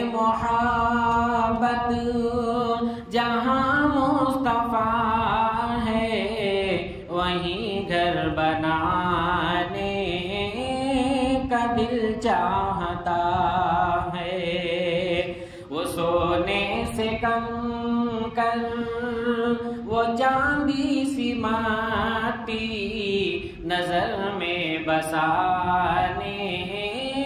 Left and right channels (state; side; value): identical; both; correlation 1.00